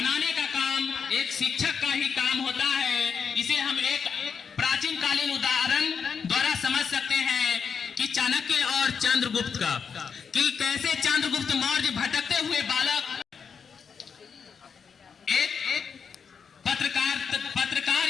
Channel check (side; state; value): right; quieter; 6.3 dB